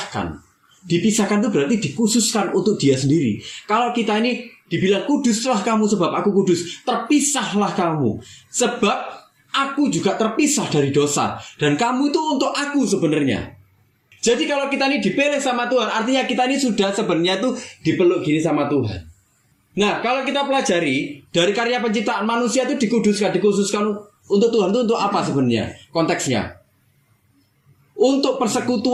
Dipisahkan itu berarti dikhususkan untuk dia sendiri. Kalau kita ini dibilang kuduslah kamu sebab aku kudus, terpisahlah kamu sebab aku juga terpisah dari dosa. Dan kamu itu untuk aku sebenarnya. Jadi kalau kita ini dipilih sama Tuhan, artinya kita ini sudah sebenarnya tuh dipeluk gini sama Tuhan. Nah, kalau kita pelajari dari karya penciptaan manusia itu dikhususkan untuk Tuhan itu untuk apa sebenarnya? Konteksnya untuk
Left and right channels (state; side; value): identical; both; correlation 1.00